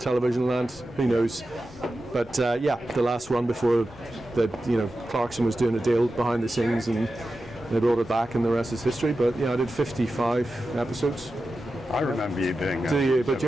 land, who knows. But the last run before Clarkson was doing a deal behind the scenes and they brought it back and the rest is history. But yeah, I did 55 episodes. I remember you doing it. Do you? But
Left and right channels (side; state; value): both; normal; correlation 0.92